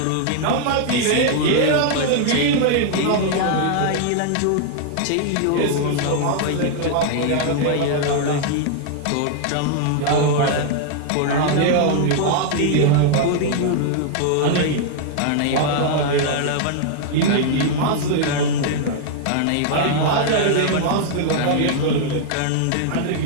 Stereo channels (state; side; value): different; both; correlation 0.00